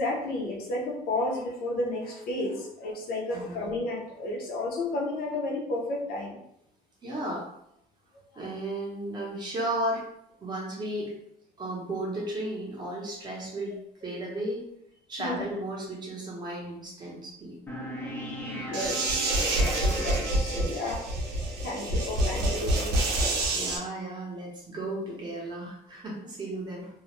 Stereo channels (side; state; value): both; normal; correlation 0.43